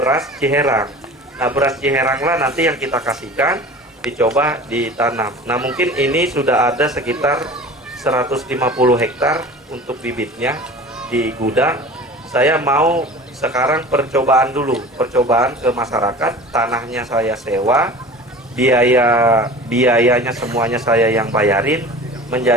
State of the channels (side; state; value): both; normal; correlation 0.39